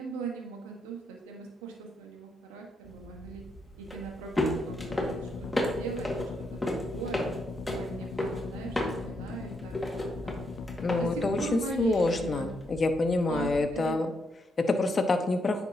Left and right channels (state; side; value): normal; both; correlation 0.79